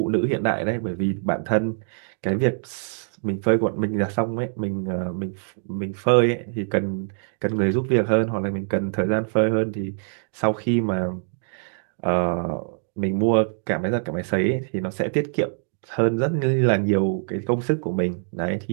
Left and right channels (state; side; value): silent; left; 63 dB below the other